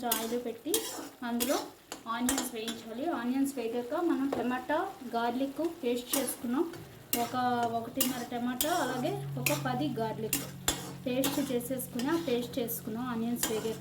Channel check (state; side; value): identical; both; correlation 1.00